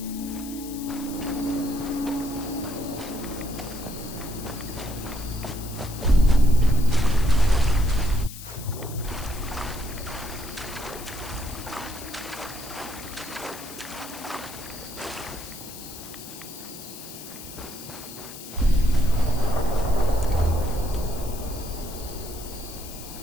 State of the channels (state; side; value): noise; left; hiss, 13 dB below the sound